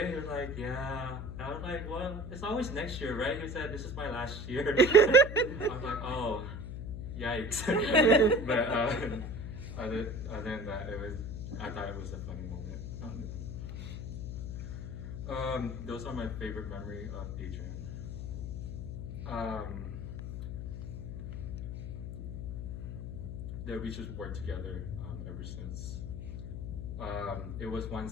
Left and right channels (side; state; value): left; noise; hum, 6 dB below the sound